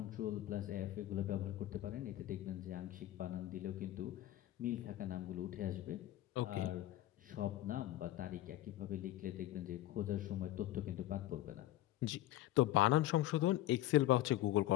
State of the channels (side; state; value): right; quieter; 14.7 dB